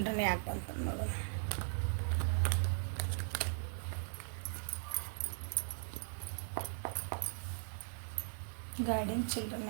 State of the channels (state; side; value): silent; left; digital silence